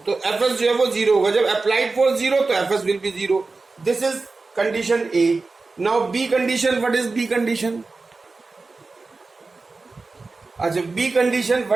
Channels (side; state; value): left; quieter; 3.8 dB